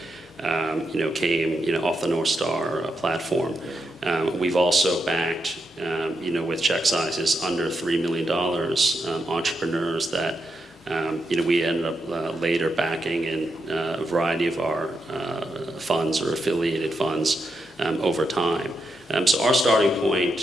came, off the North Star platform. We've also backed, with check sizes under $3 million, entrepreneurs that, we ended up later backing in a variety of our funds or affiliated funds over time. So our starting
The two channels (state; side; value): normal; both; correlation 0.84